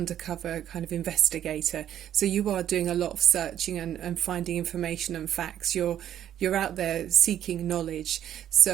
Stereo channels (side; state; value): left; quieter; 10.8 dB